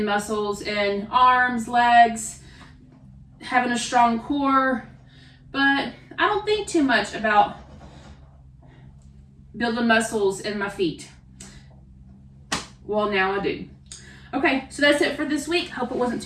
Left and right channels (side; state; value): both; identical; correlation 1.00